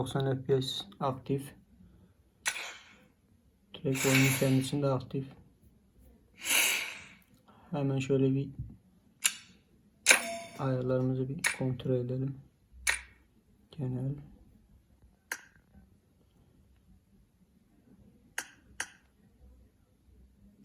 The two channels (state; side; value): identical; both; correlation 1.00